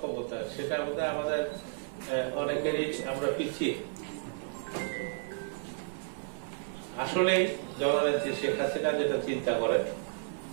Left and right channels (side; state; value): left; silent; 56 dB below the other